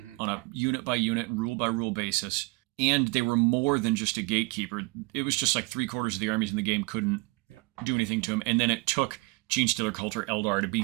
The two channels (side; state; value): left; quieter; 26.4 dB